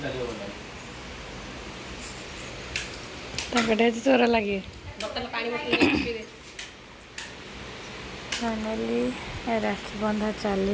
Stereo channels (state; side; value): identical; both; correlation 1.00